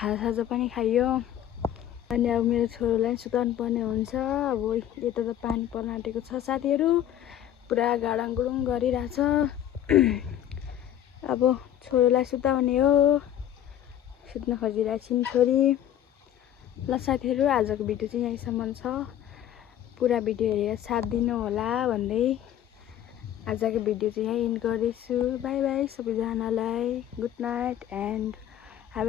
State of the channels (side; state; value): right; quieter; 11.2 dB